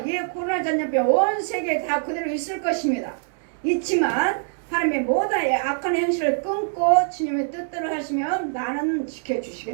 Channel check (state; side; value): silent; left; digital silence